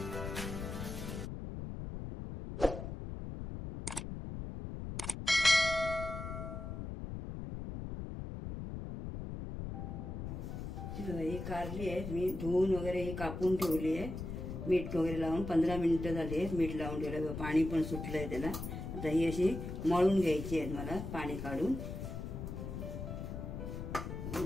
ही कारली आहे, मी धुवून वगैरे ही कापून ठेवली आहे. मीठ वगैरे लावून 15 मिनिटं झाली. मीठ लावून ठेवलं, पाणी पण सुटलंय त्याला. आता ही अशी मळून घ्यायची आहे मला, पाणी काढून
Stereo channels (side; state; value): left; noise; rumble, 6 dB below the sound